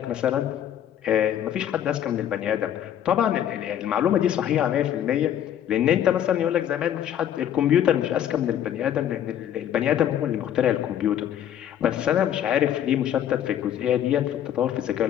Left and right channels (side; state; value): right; quieter; 10.4 dB